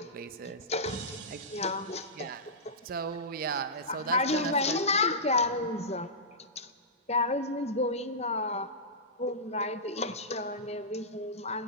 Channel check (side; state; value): both; normal; correlation -0.15